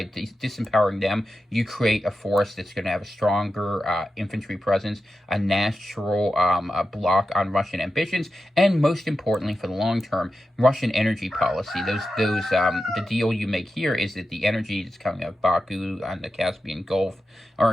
disempowering them, you create a force that's going to have a stronger infantry presence, a natural block on Russian ambitions, and most importantly, for the long term, Russian energy policy. The deal you make here is that the energy that's coming out of Baku on the Caspian Gulf,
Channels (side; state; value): both; normal; correlation 0.91